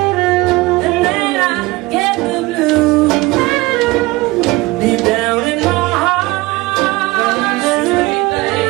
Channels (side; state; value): left; quieter; 21.3 dB